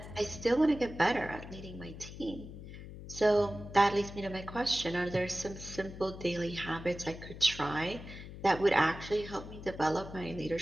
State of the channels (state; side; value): noise; left; hum, 12 dB below the sound